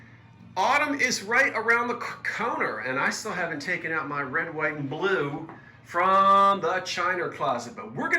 Autumn is right around the corner, and I still haven't taken out my red, white, and blue from the china closet, but we're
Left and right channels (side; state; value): both; identical; correlation 1.00